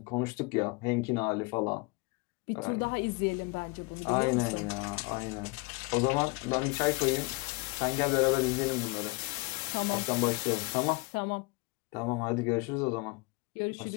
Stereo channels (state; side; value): quieter; right; 26.4 dB